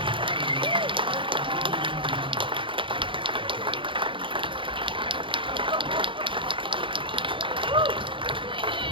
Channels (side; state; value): left; late; 0.25 ms